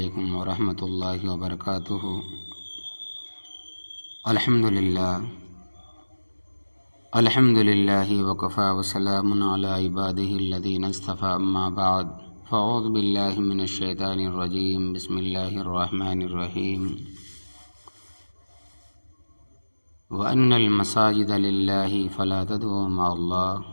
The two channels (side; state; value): both; inverted; correlation -1.00